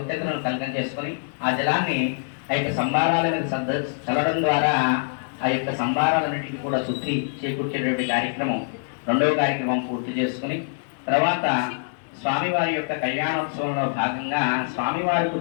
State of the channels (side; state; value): right; silent; 62 dB below the other